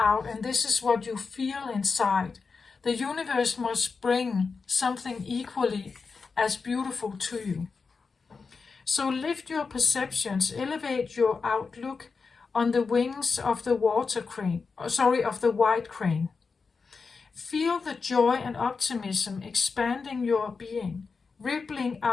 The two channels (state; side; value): quieter; right; 4.8 dB